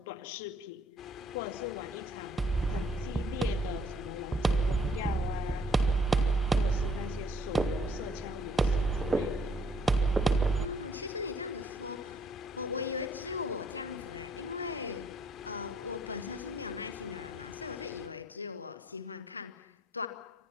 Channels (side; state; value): both; normal; correlation 0.66